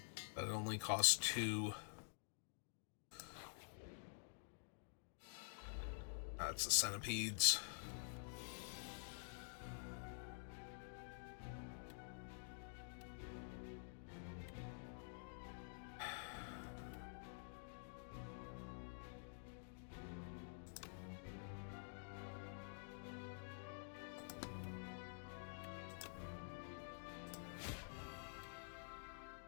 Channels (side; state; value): right; silent; digital silence